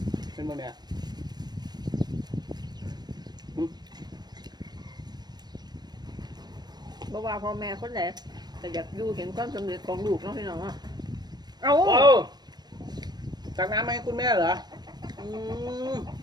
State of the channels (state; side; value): late; left; 0.20 ms